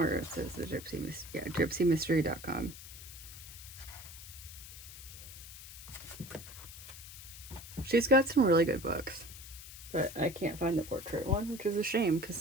it says the gypsymystery.com. She's got some really good books, but I can't find the portrait one, which is a shame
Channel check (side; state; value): left; noise; hiss, 14 dB below the sound